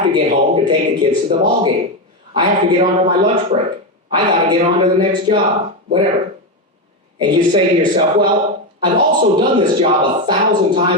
to get home to take the kids to the ball game. I have to get onto my lunch break. I got to get on to the next job, whatever. And you say to yourself, well, I've also done this job 1,000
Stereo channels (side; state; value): both; normal; correlation 0.11